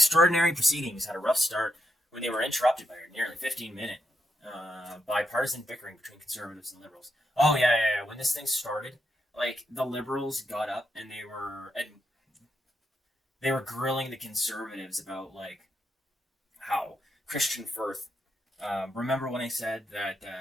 proceedings had a rough start when they were interrupted by a nearly 15-minute bipartisan bickering between conservatives and liberals. Oh yeah. When this thing started, like, the liberals got up and they were grilling the conservatives about, like, how Kristian Firth. Remember when I said that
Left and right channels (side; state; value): both; normal; correlation 0.81